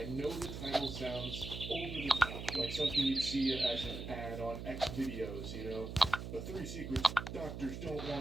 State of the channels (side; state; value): right; noise; hum, 7 dB below the sound